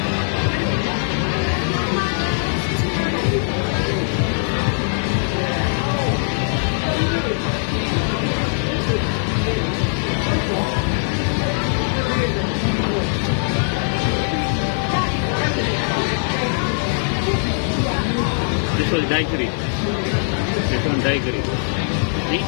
This was daiquiri. This one daiquiri. Eat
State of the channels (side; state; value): right; silent; 57 dB below the other